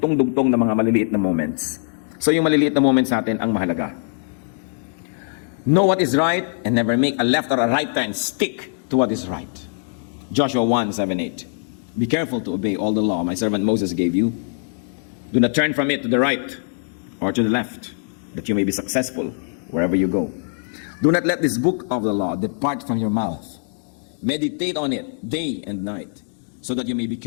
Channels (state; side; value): silent; right; digital silence